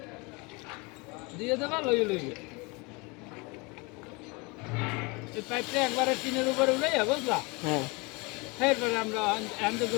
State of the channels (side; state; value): right; quieter; 27.8 dB